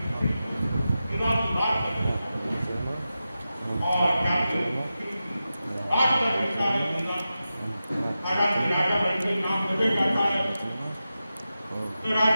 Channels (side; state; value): both; inverted; correlation -0.92